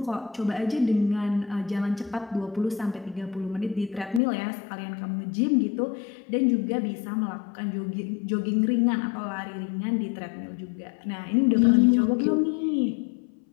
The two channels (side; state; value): right; drops out; at 4.2 s